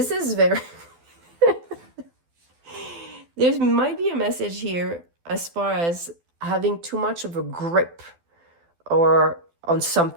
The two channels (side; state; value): left; late; 12 ms